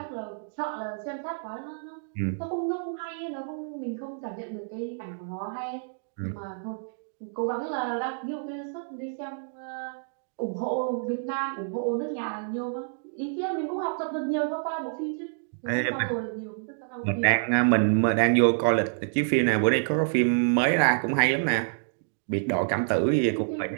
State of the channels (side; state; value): left; silent; digital silence